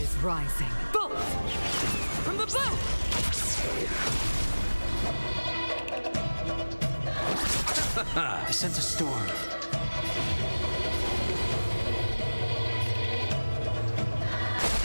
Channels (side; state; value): both; inverted; correlation -1.00